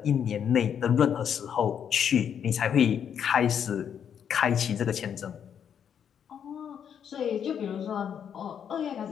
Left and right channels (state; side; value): quieter; right; 8.3 dB